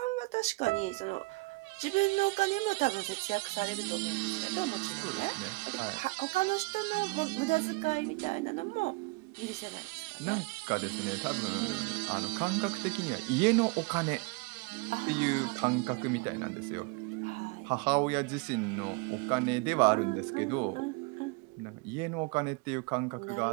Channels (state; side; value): quieter; left; 26.8 dB